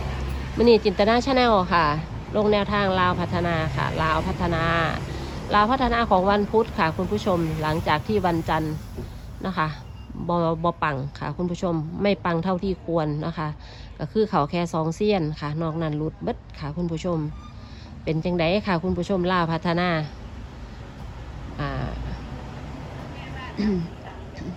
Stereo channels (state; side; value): identical; both; correlation 1.00